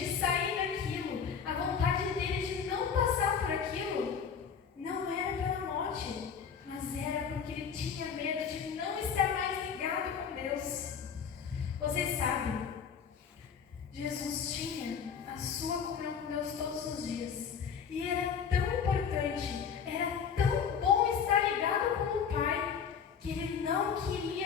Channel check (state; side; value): quieter; right; 6.9 dB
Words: sair daquilo, a vontade dele de não passar por aquilo, não era pela morte, mas era porque ele tinha medo de não estar mais ligado com Deus. Vocês sabem, Jesus tinha a sua comunhão com Deus todos os dias. E era tão importante, era tão bom estar ligado com o Pai, que ele não